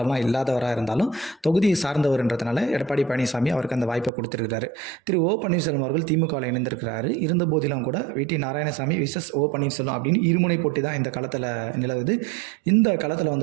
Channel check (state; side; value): drops out; left; at 4.1 s